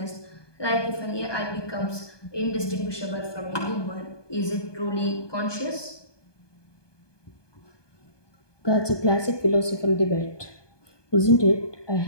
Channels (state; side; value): late; right; 1.2 ms